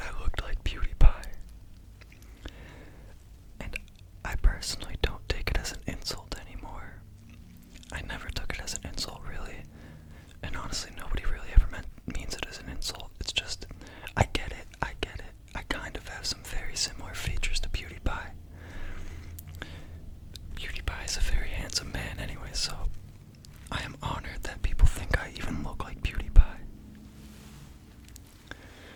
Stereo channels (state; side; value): identical; both; correlation 1.00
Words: I looked like PewDiePie. And I personally don't take it as an insult anymore. I never took it as an insult, really. And honestly, nobody really ever means it as an insult. It's just, I get it. I kind of have some very similar features